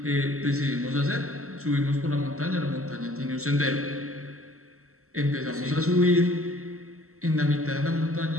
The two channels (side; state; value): left; late; 0.63 ms